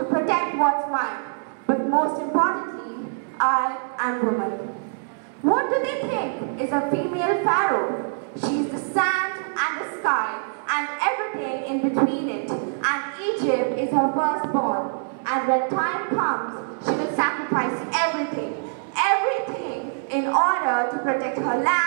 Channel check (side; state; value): left; silent; digital silence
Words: protect what's mine. But most importantly, I am woman. What do they think is a female Pharaoh? She is the sand and the sky and everything in between it. And Egypt is her firstborn. And when time comes, she will sacrifice everything in order to protect her